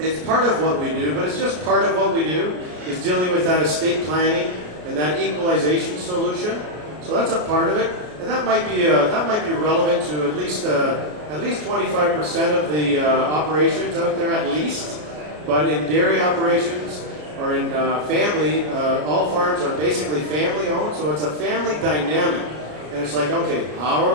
part of what we do, but it's just part of what we do, is dealing with that estate planning and that equalization solution. So that's a part of it, and that might be relevant to at least 25% of the operations out there, at least. But in dairy operations or in family, all farms are basically family owned, so it's a family dynamic. And it's like, okay, how are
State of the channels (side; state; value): left; late; 33 ms